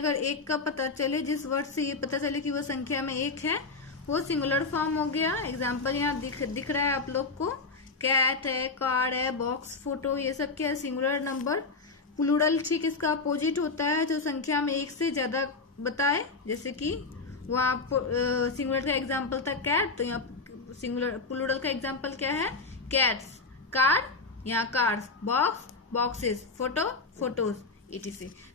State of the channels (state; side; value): quieter; right; 3.9 dB